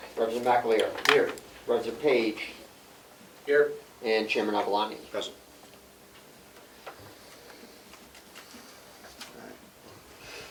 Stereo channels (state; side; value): identical; both; correlation 1.00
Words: Representative McAleer. Here. Representative Page. Here. And Chairman Avalani. Present.